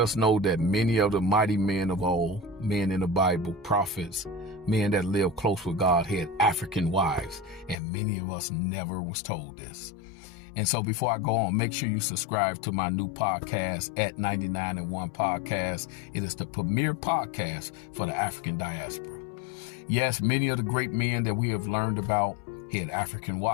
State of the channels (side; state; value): right; drops out; at 7.8 s